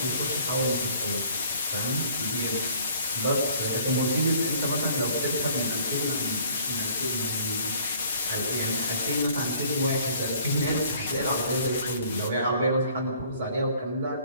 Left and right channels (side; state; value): both; inverted; correlation -0.56